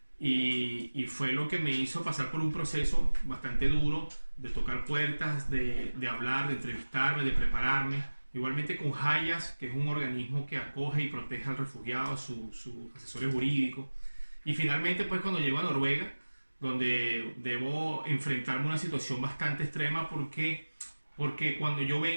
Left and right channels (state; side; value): inverted; both; correlation -1.00